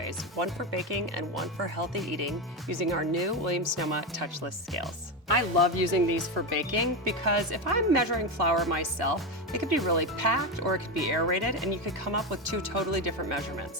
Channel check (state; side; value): normal; both; correlation 0.14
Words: one for baking and one for healthy eating, using our new Williams-Sonoma touchless scales. I love using these for baking because if I'm measuring flour myself, it could be really packed or it could be aerated, and you could come up with two totally different